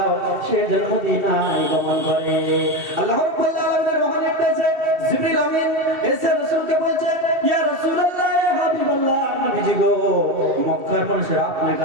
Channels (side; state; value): left; late; 2.7 ms